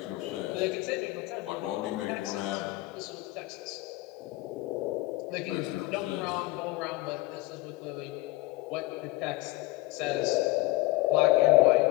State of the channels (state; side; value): quieter; right; 19.3 dB